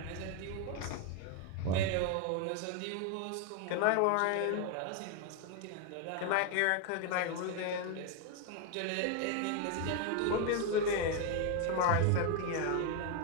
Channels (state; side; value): different; both; correlation 0.01